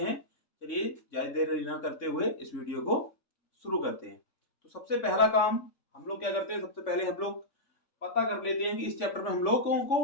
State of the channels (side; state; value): right; late; 3.5 ms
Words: हैं। चलिए ज्यादा देर न करते हुए इस वीडियो को शुरू करते हैं। तो सबसे पहला काम हम लोग क्या करते हैं, सबसे पहले हम लोग पता कर लेते हैं कि इस चैप्टर में हम लोगों